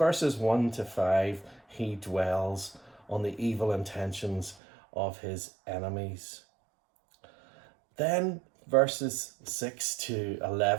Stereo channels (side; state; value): left; drops out; at 4.5 s